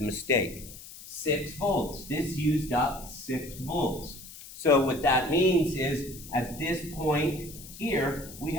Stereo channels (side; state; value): left; noise; hiss, 15 dB below the sound